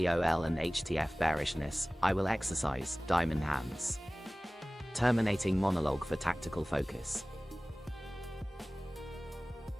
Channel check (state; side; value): normal; both; correlation 0.98